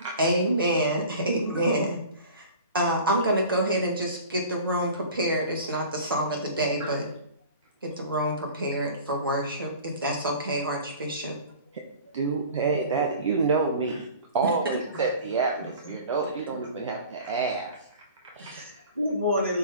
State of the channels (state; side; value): inverted; both; correlation -0.42